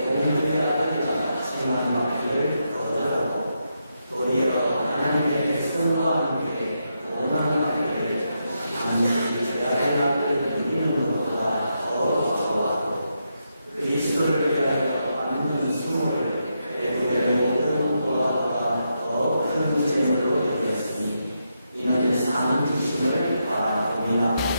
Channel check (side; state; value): both; inverted; correlation -0.83